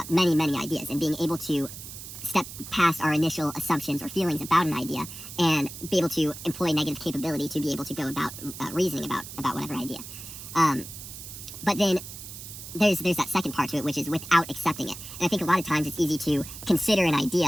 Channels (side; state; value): right; noise; hiss, 12 dB below the sound